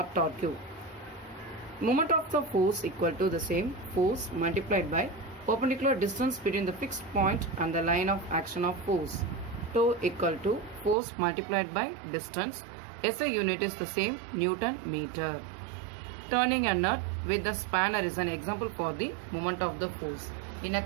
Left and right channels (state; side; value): drops out; left; at 11.0 s